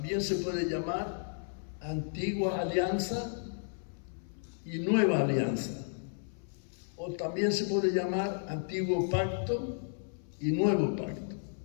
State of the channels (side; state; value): right; silent; 56 dB below the other